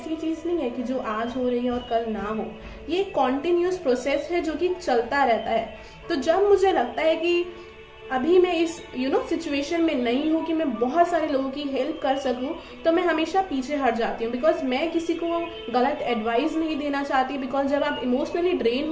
चीज़ नहीं है कि जो आज हो रही है और कल ना हो। ये एक कॉन्टिन्यूस प्रोसेस है जो कि चलता रहता है। तो जब मुझे लगता है कि अभी मैं इस सिचुएशन में नहीं हूँ कि मैं बहुत सारे लोगों की हेल्प कर सकूँ, तो मैं हमेशा पीछे हट जाती हूँ। बिकॉज मैं किसी को गलत एडवाइस नहीं देना चाहती। बिकॉज जब आप इमोशनली ड्रेन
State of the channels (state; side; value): identical; both; correlation 1.00